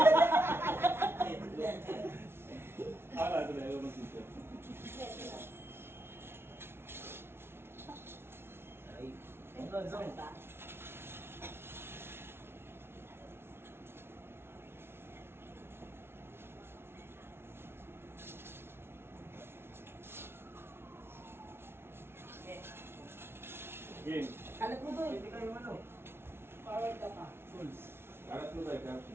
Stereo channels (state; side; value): late; left; 0.12 ms